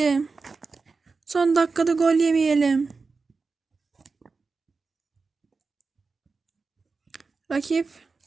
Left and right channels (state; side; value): quieter; left; 4.4 dB